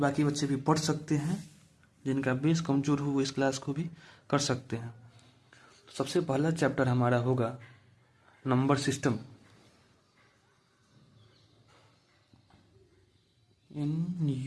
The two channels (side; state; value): both; identical; correlation 1.00